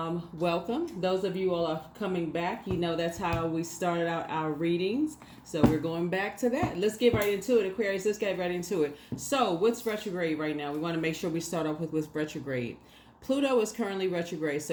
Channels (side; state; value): both; identical; correlation 1.00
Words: Those of you all are coming back, you know that's how we started out our readings. So we're going back to that. Let's get right into it, Aquarius. Let's get right into it. So what's retrograde right now? We want to make sure we start off with retrograde. Pluto is currently retrograde.